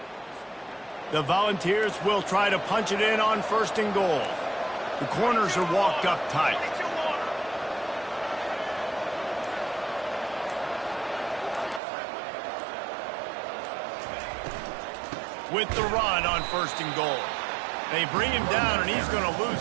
The Volunteers will try to punch it in on 1st and goal. The corners are walked up tight. With the run on 1st and goal. They bring him down, and he's going to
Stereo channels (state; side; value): drops out; left; at 11.8 s